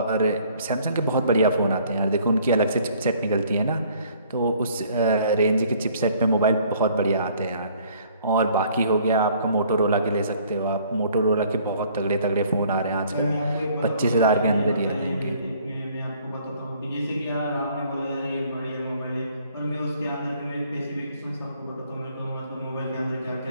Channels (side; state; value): both; inverted; correlation -0.59